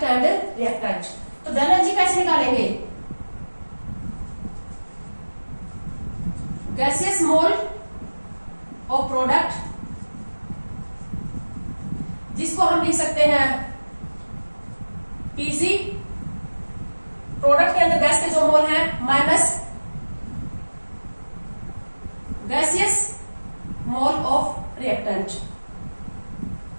and reactant. तो डेल एन जी कैसे निकालेंगे, गैसेस मोल ऑफ प्रोडक्ट, जिसको हम लिख सकते हैं पीसी, प्रोडक्ट के अंदर गैस के जो मोल है, minus gaseous mole of reactant,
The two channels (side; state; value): both; inverted; correlation -1.00